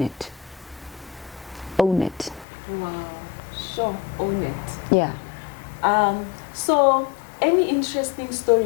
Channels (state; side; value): drops out; right; at 2.5 s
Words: it. Own it. Wow. Sure. Own it. Yeah. So any interesting